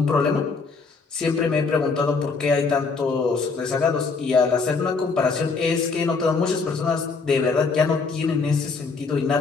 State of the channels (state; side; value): quieter; right; 4.5 dB